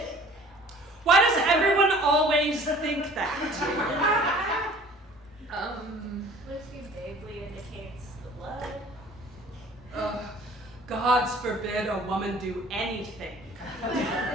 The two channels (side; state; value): both; normal; correlation 0.50